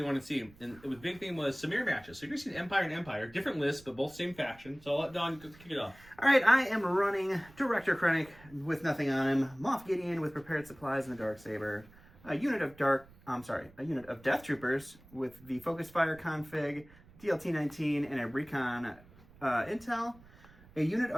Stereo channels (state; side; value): noise; right; rumble, 24 dB below the sound